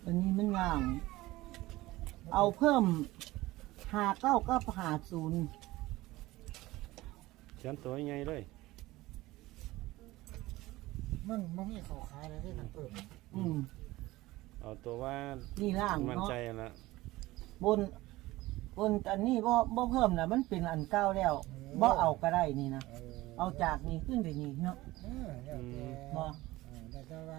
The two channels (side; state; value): left; quieter; 18.6 dB